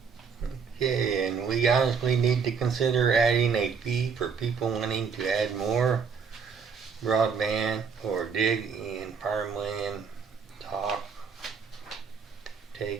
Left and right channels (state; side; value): quieter; left; 5.9 dB